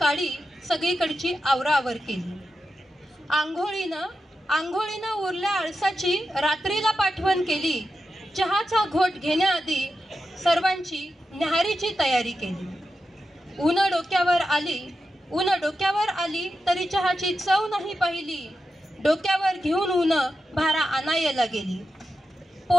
सगळीकडची आवराआवर केली. आंघोळीनं उरल्या आळसाची रात्रीला पाठवण केली. चहाचा घोट घेण्याआधी सर्वांची न्याहारीची तयारी केली. ऊन डोक्यावर आली तरी चहाची चव नाही पाहिली. डोक्यावर घेऊन ऊन भारा आणायला गेली.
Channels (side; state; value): both; normal; correlation 0.89